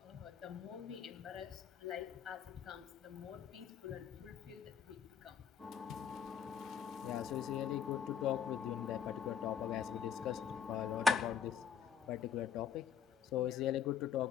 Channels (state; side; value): quieter; right; 7.7 dB